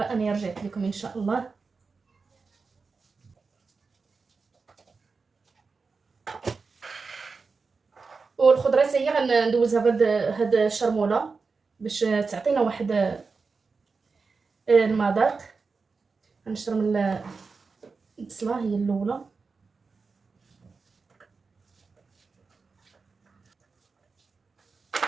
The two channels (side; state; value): left; quieter; 4.6 dB